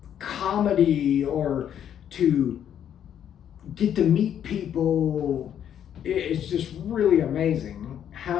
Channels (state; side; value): quieter; right; 9.6 dB